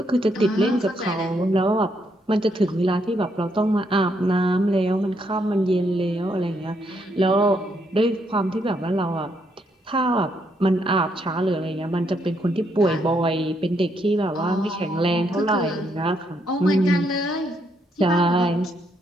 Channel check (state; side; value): normal; both; correlation 0.75